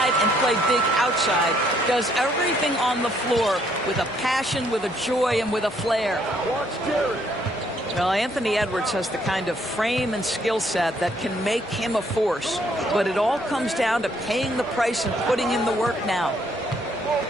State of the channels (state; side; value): normal; both; correlation 0.68